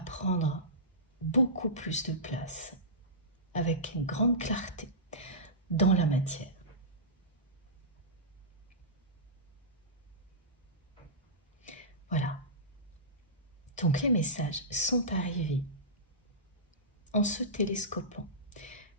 prendre beaucoup plus de place avec une grande clarté dans la matière. Voilà. Donc les messages sont arrivés en se télescopant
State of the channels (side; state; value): both; normal; correlation -0.18